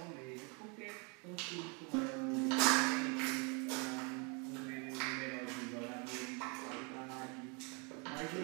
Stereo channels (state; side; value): quieter; left; 33.2 dB